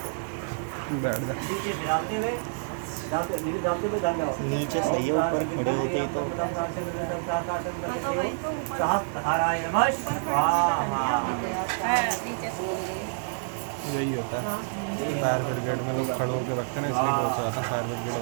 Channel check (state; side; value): silent; left; digital silence